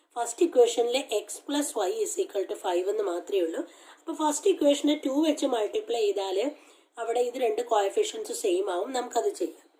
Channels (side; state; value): both; identical; correlation 1.00